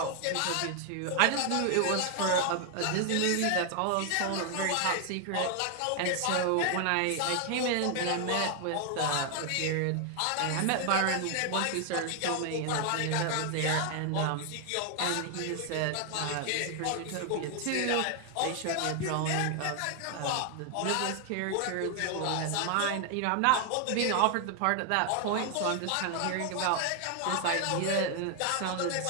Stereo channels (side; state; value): both; different; correlation 0.00